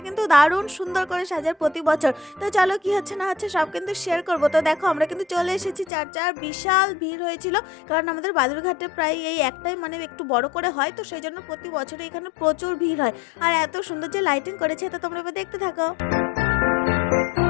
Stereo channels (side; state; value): right; drops out; at 5.9 s